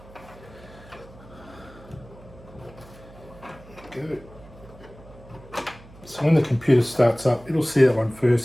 Good. So when the computer starts up, it'll see that one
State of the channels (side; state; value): right; noise; hum, 21 dB below the sound